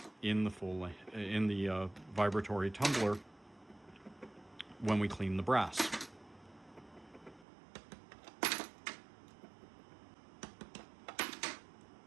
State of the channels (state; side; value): drops out; left; at 7.5 s